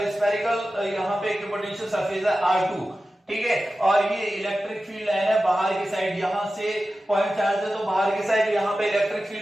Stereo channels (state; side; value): normal; both; correlation 0.94